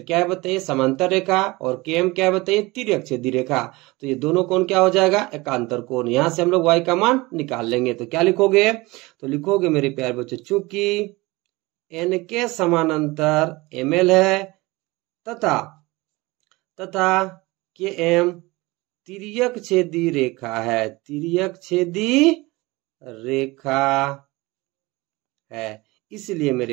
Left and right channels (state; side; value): quieter; left; 22.3 dB